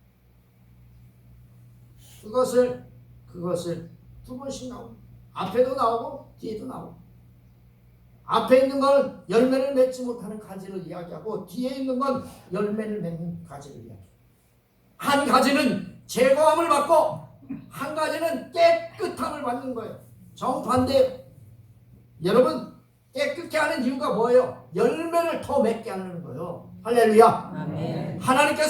그것을 두 번씩 나오고 앞에도 나오고 뒤에도 나오고 앞에 있는 건 열매를 맺지 못하는 가지를 이야기하고 뒤에 있는 건 열매를 맺는 가지를 이야기해요. 한 가지는 제거함을 받고 한 가지는 깨끗함을 받는 거예요. 정반대. 여러분 깨끗게 하는 이유가 뭐예요? 열매를 더 맺게 하는 거예요. 할렐루야. 아멘.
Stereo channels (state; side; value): identical; both; correlation 1.00